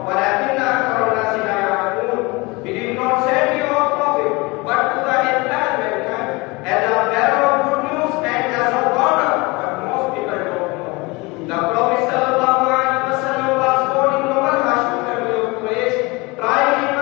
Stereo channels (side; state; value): right; quieter; 25.0 dB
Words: وَلَكِنَّ أَكْثَرَ النَّاسِ لَا يَعْلَمُونَ. We did not send you a prophet but to the entire mankind as a bearer of good news and as a warner, but most people don't know. The Prophet sallallahu alaihi wasallam was born in noble Hashim family of Quraysh, tried in